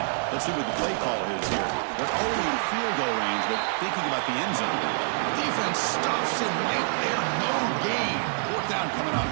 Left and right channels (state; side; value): silent; left; digital silence